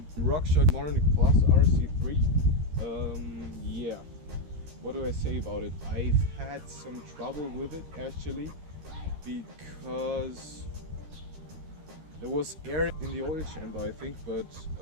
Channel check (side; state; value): left; late; 13 ms